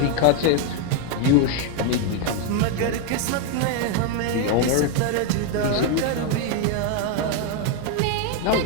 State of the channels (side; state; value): both; different; correlation 0.01